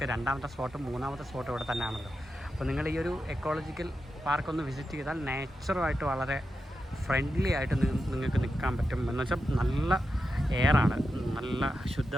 2ാമത്തെ സ്പോട്ടും 3ാമത്തെ സ്പോട്ടും ഇവിടെ തന്നെയാണല്ലോ. അപ്പോൾ നിങ്ങൾ ഈ ഒരു എക്കോളജിക്കൽ പാർക്കൊന്ന് വിസിറ്റ് ചെയ്താൽ നേച്ചറുമായിട്ട് വളരെ ഫ്രണ്ട്ലി ആയിട്ട് നിങ്ങൾക്ക് നിൽക്കാൻ പറ്റും. എന്ന് വെച്ചാൽ നല്ല എയറാണ്, നല്ല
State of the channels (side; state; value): both; normal; correlation 0.89